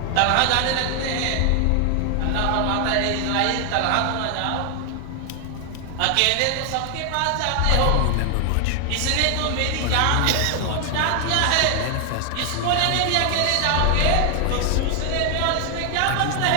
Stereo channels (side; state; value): both; different; correlation 0.00